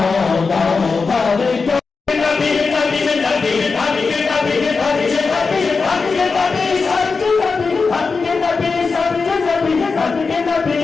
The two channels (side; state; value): right; quieter; 4.6 dB